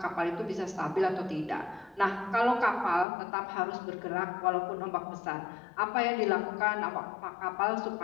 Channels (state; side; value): drops out; right; at 3.1 s